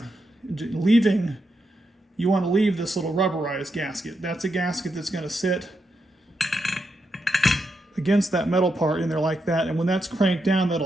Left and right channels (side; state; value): both; normal; correlation 0.84